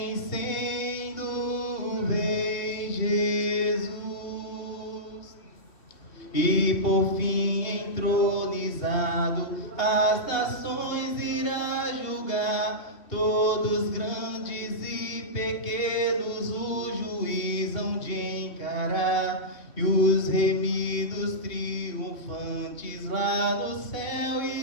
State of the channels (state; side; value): late; right; 3.0 ms